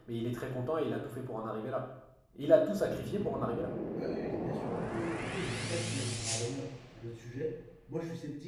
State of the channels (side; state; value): both; identical; correlation 1.00